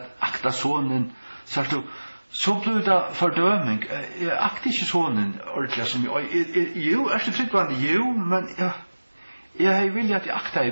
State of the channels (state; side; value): inverted; both; correlation -1.00